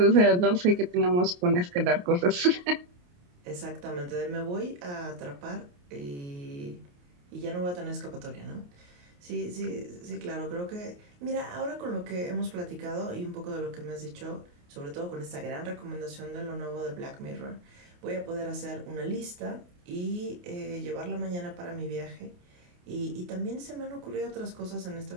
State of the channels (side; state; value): left; late; 28 ms